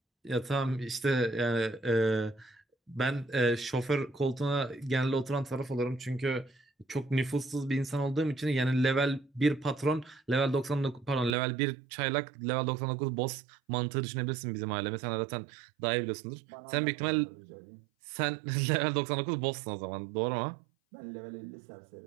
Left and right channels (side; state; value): left; drops out; at 11.4 s